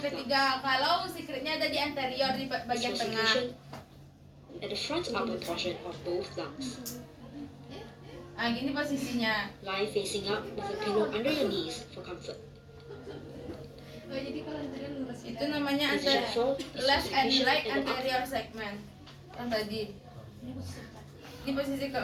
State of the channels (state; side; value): identical; both; correlation 1.00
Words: ketiga. Kalau secretnya ada di anterior di lungs. Is bagian for tengah. secretion at the front upper portion of both lungs. Nah, gini posisinya. Lie facing up with a pillow under your knees for comfort. Itu namanya Position 4 is for left and secretion right at the upper anterior segment. Yang tadi. Ini posisi